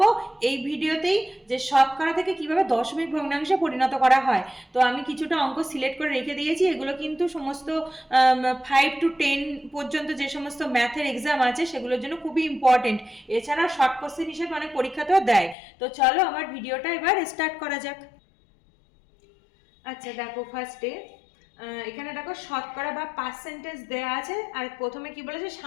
এই ভিডিওতেই যে শতকরা থেকে কিভাবে দশমিক ভগ্নাংশে পরিণত করা হয়। তো আমি কিছুটা অঙ্ক সিলেক্ট করে রেখে দিয়েছি, এগুলো কিন্তু সমস্ত 5 to 10 পর্যন্ত যে সমস্ত ম্যাথের এক্সাম আছে সেগুলোর জন্য খুবই ইম্পর্টেন্ট। এছাড়া শর্ট কোশ্চেন হিসেবে অনেক পরীক্ষাতেও দেয়। তো চলো আমার ভিডিওটা এবার স্টার্ট করা যাক। আচ্ছা দেখো, ফার্স্টে এখানে দেখো শতকরা বা পার্সেন্টেজ দেওয়া আছে, আর প্রথমে কি বলেছে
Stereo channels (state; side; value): drops out; right; at 15.6 s